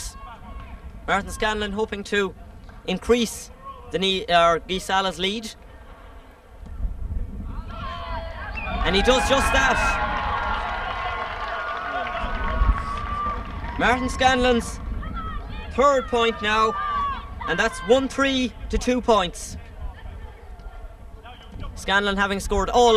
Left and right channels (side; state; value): both; identical; correlation 1.00